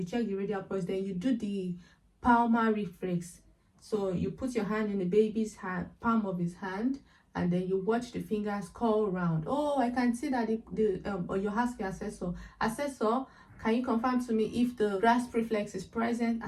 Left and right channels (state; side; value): identical; both; correlation 1.00